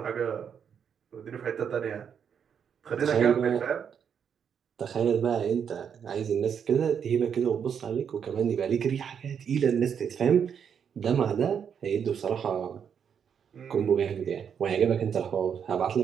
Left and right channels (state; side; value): quieter; left; 7.6 dB